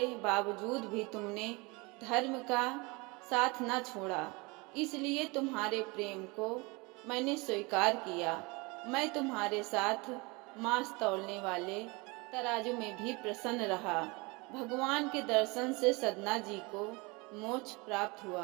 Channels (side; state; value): left; quieter; 26.6 dB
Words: बावजूद भी तुमने धर्म का साथ न छोड़ा, इसलिए तुम्हारे प्रेम को मैंने स्वीकार किया। मैं तुम्हारे साथ मांस तौलने वाले तराजू में भी प्रसन्न रहा। भगवान के दर्शन से सदना जी को मोक्ष प्राप्त